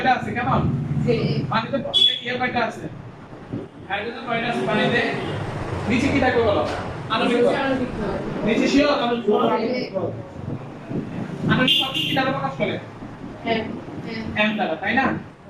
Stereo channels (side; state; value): both; identical; correlation 1.00